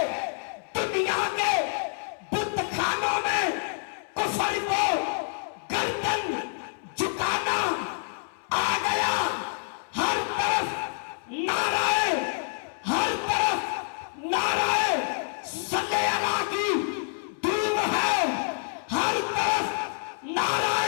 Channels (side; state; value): right; silent; 60 dB below the other